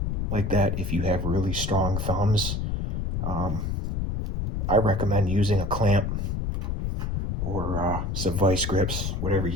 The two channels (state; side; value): noise; left; rumble, 1 dB below the sound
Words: like that if you have really strong thumbs. I recommend using a clamp or some vice grips, whatever